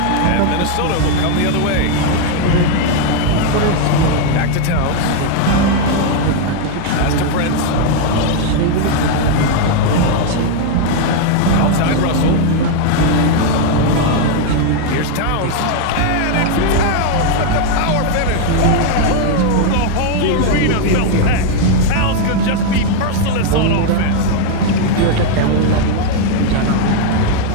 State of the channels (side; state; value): both; different; correlation 0.01